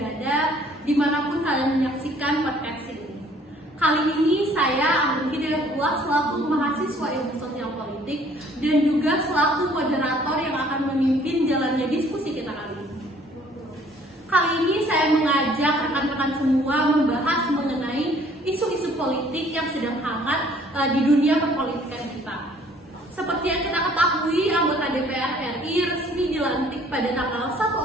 dimanapun kalian menyaksikan podcast ini. Kali ini saya Amrul Hidayatullah selaku mahasiswa ilmu sosial politik dan juga selaku moderator yang akan memimpin jalannya diskusi kita kali ini. Kali ini saya mengajak rekan-rekan semua membahas mengenai isu-isu politik yang sedang hangat di dunia perpolitikan kita. Seperti yang kita ketahui, anggota DPR RI resmi dilantik pada tanggal 1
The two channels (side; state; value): both; normal; correlation 0.58